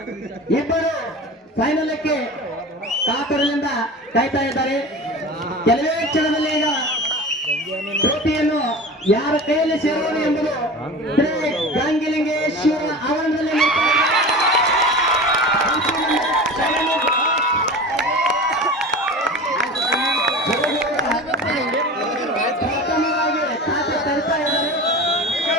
2 ಫೈನಲ್ಗೆ ಕಾತರದಿಂದ ಕಾಯ್ತಾ ಇದ್ದಾರೆ. ಕೆಲವೇ ಕ್ಷಣದಲ್ಲಿ ಈಗ ಟ್ರೋಫಿಯನ್ನು ಯಾರ ಕೈಯಲ್ಲಿ ಸೇರುವುದು ಎಂಬುದು ಗಾಂಗಿಲಿಂಗೇಶ್ವರ ಆವರಣದಲ್ಲಿ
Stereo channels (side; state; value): both; normal; correlation 0.33